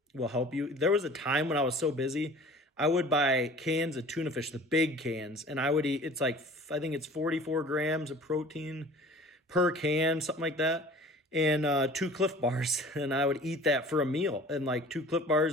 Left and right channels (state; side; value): normal; both; correlation 0.45